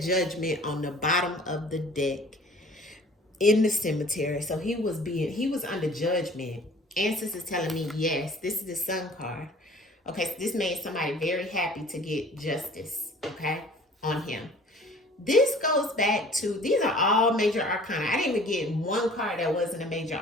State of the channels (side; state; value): both; normal; correlation 0.49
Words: on the bottom of the deck in the cemetery. So he was under judgment. Ancestors telling me yes. This is the sun card. Okay, so this made somebody very happy to get justice, okay, on him. This goes back to, these are all major arcana. I didn't even get one card that wasn't a major